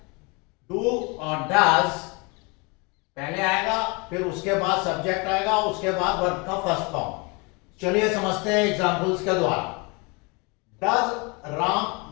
डू और डज पहले आएगा, फिर उसके बाद सब्जेक्ट आएगा, उसके बाद वर्ब का फर्स्ट फॉर्म। चलिए समझते हैं एग्जांपल्स के द्वारा। डज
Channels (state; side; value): quieter; right; 29.5 dB